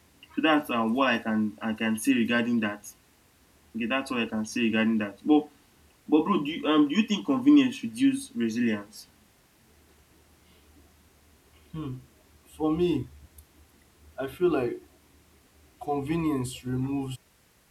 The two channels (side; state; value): both; identical; correlation 1.00